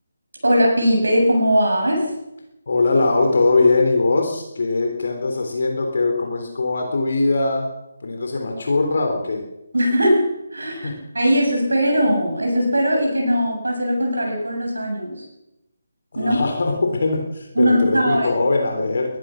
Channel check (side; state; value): both; inverted; correlation -0.89